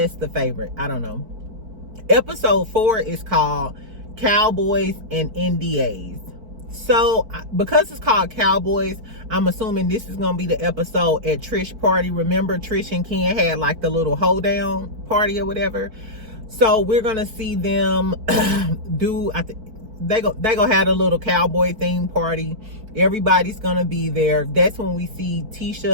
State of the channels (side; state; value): left; late; 4.6 ms